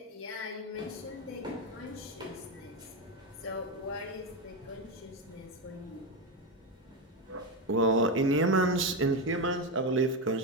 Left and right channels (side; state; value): both; normal; correlation 0.12